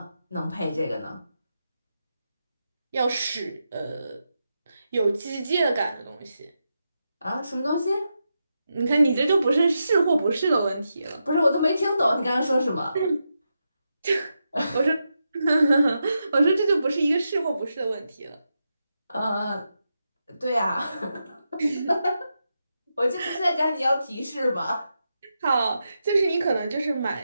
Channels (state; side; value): inverted; both; correlation -0.86